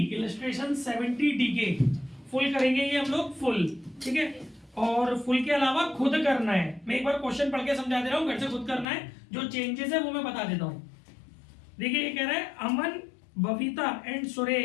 इलस्ट्रेशन 70 डी के फुल करेंगे ये हम लोग फुल। ठीक है, और फुल के अलावा खुद करना है। मैं एक बार क्वेश्चन पढ़ के समझा दे रहा हूँ, घर से खुद करना है। जो चेंजेस है वो मैं बता देता हूँ। देखिए, ये कह रहा है Aman, Babita and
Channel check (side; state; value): right; drops out; at 8.8 s